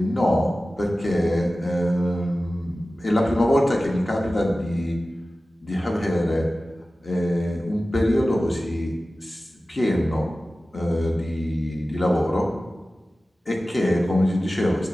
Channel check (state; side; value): normal; both; correlation 0.96